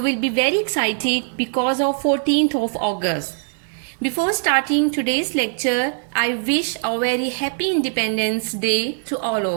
be very excited because of 14th of August. Before starting today's lecture, I wish a very happy Independence Day to all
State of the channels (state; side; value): silent; left; digital silence